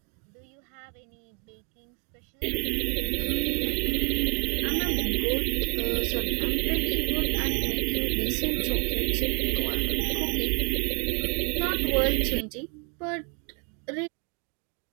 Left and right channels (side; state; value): left; quieter; 36.5 dB